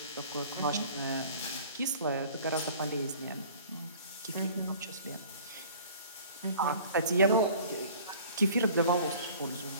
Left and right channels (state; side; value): inverted; both; correlation -0.48